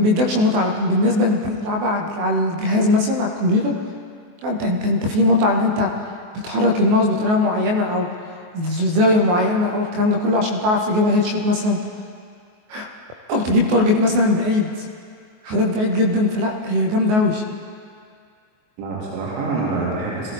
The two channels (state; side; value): late; left; 24 ms